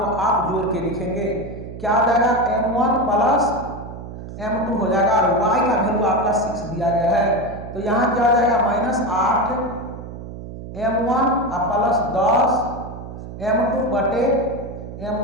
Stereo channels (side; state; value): right; noise; hum, 11 dB below the sound